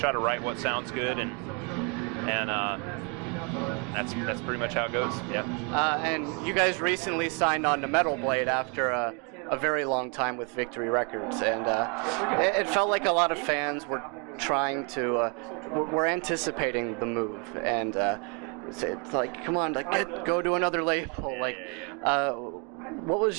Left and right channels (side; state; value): left; quieter; 34.8 dB